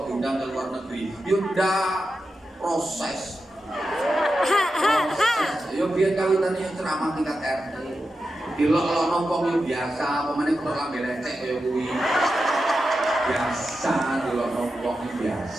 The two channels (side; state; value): both; normal; correlation 0.90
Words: diundang ke luar negeri. Yaudah proses. Yo biar kawitannya ceramah tingkat RT. Dilok-lok nongkong yo biasa, pemane kok lambe lecek kaya kuwi. Biasa dilok nongkong